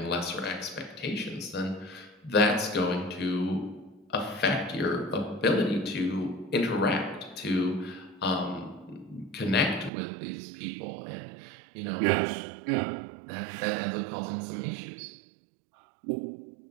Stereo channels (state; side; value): drops out; left; at 9.9 s